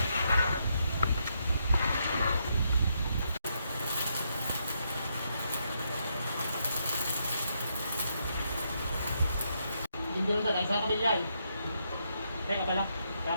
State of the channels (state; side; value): inverted; both; correlation -0.79